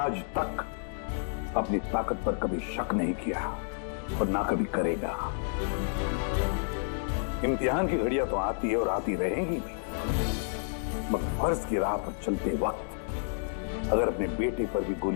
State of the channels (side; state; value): right; silent; digital silence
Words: तक अपनी ताकत पर कभी शक नहीं किया और ना कभी करेगा। इम्तिहान की घड़ियां तो आती है और आती रहेंगी भी, मगर फर्ज की राह पर चलते वक्त अगर अपने बेटे पर भी